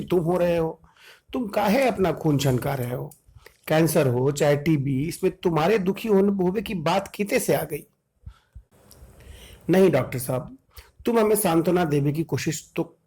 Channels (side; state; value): both; identical; correlation 1.00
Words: तुम हो रहे हो। तुम काहे अपना खून छनका रहे हो? कैंसर हो चाहे टीबी, इसमें तुम्हारे दुखी होने होवे की बात किते से आ गई? नहीं डॉक्टर साहब, तुम हमें सांत्वना देने की कोशिश तो